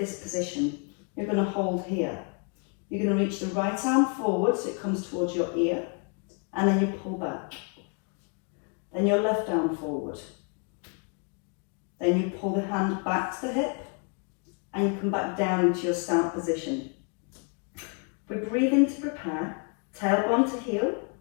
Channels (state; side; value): quieter; right; 38.1 dB